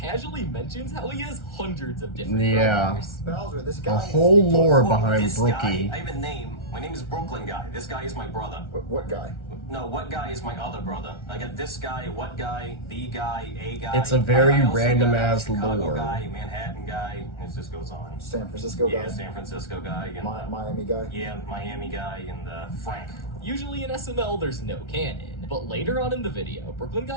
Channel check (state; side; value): late; right; 1.3 ms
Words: mentions how he has hundreds of different Yeah. brothers. Bowser, this The guy. whole lore Well, behind this Brookie. guy, I have a name. My name is Brooklyn Guy. This guy is my brother. What guy? No, what guy is my other brother? I got this guy, what guy, the guy, a guy. It's a very I also random got ass Chicago lore. guy, Manhattan guy. It just goes on. San Francisco guy? Yeah, San Francisco guy. And, Miami guy? yeah, Miami guy and Frank. Usually in SML, there's no canon, but later on in the video, Brooklyn